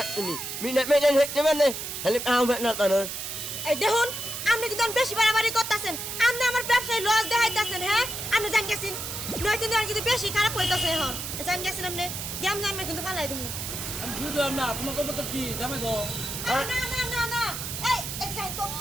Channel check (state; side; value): noise; right; hiss, 6 dB below the sound